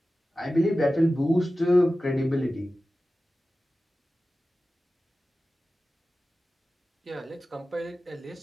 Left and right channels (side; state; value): both; normal; correlation 0.95